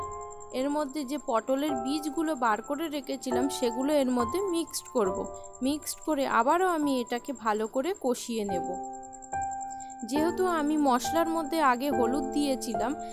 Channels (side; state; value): both; identical; correlation 1.00